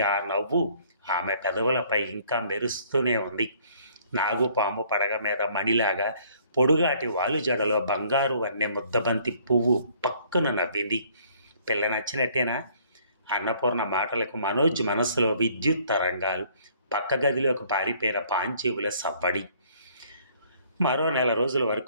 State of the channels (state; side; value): inverted; both; correlation -0.60